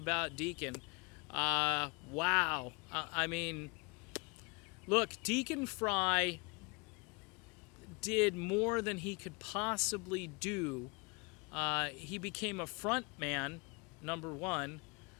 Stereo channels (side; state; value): right; quieter; 30.6 dB